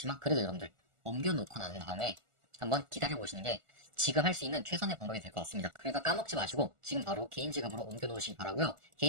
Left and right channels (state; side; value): late; left; 1.4 ms